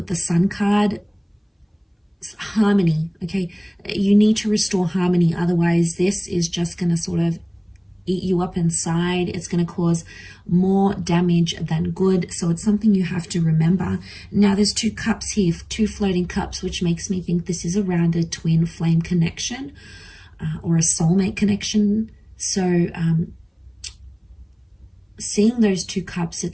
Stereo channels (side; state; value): both; identical; correlation 1.00